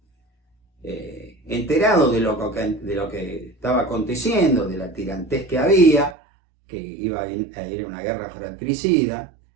Enterado de lo que estaba aconteciendo, de la tirantez que había, que iba a ir a una guerra fratricida,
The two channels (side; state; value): left; drops out; at 6.2 s